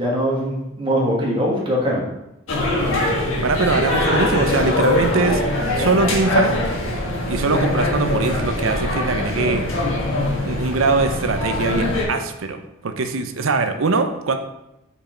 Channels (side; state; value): both; normal; correlation 0.15